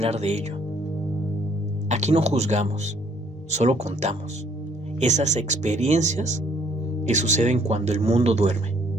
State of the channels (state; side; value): normal; both; correlation 0.64